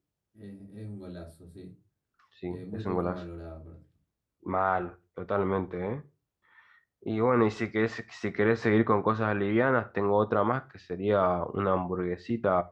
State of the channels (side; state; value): both; identical; correlation 1.00